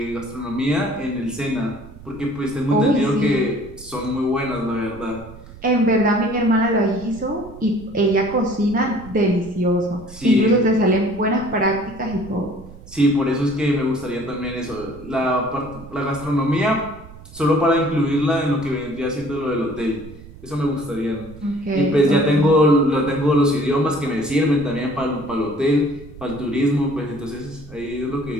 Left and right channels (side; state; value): right; noise; rumble, 18 dB below the sound